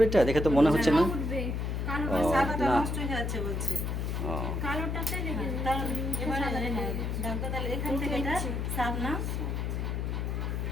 এটা দেখে তো মনে হচ্ছে না। ও সাদাটা না, নষ্ট হয়ে যাচ্ছে বলছে। ও কালোটাতে রেখে দাও। এবারে দাগটা তাহলে এখান থেকে এটা সাত না,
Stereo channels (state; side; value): noise; left; hum, 1 dB below the sound